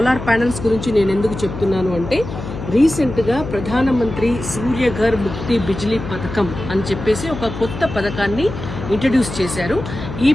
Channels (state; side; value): noise; left; hum, 9 dB below the sound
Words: ప్యానెల్స్ గురించి నేను ఎందుకు చెప్తున్నాను అంటే, రీసెంట్గా ప్రధానమంత్రి సూర్యఘర్ ముక్తి బిజ్లీ పథకం అని చెప్పేసి ఒక కొత్త పథకాన్ని ఇంట్రడ్యూస్ చేశారు. ఈ